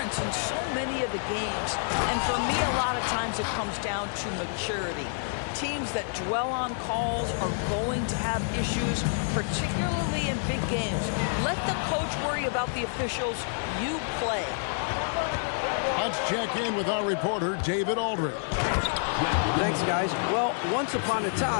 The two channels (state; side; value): silent; right; digital silence